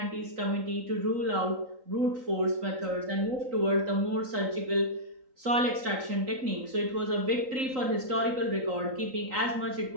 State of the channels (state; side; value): late; left; 3.9 ms